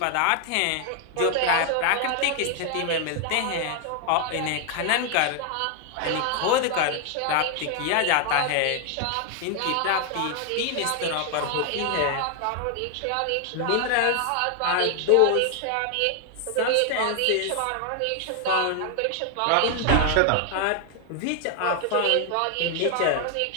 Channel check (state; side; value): different; both; correlation 0.00